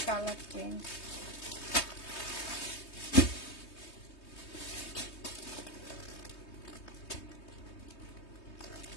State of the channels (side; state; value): right; late; 3.2 ms